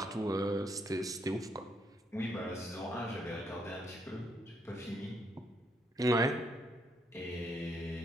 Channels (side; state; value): both; normal; correlation 0.74